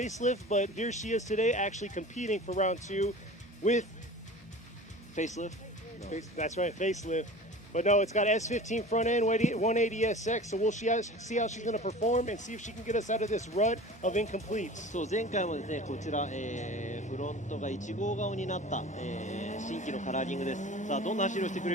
but here she is today actually competing for round 2 with Facelift? No. That's right, facelift. But no, it's got S15 front end, 180SX, so we'll see how she's going to perform and see if she can get us out of this rut of incompletes. そう、前回もですね、こちら、フロントが1号顔になった、新規のカラーリングです。さあ、どんな走りをしてく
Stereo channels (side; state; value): both; normal; correlation 0.39